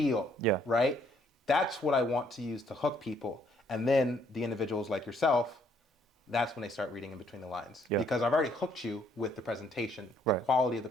Yeah. Right? That's what I want to use to hook people. And then the individuals like yourself, that's when they start reading in between the lines. Yeah. Because I've already hooked you with the presentation, the Right. quality of the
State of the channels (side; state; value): both; normal; correlation 0.67